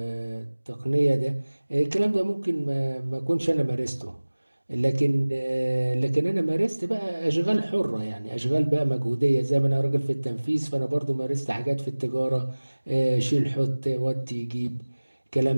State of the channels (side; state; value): both; inverted; correlation -1.00